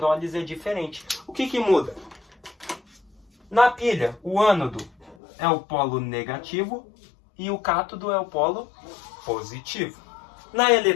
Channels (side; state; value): right; drops out; at 5.2 s